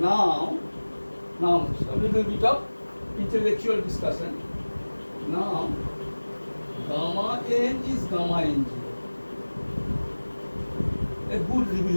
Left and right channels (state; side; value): inverted; both; correlation -1.00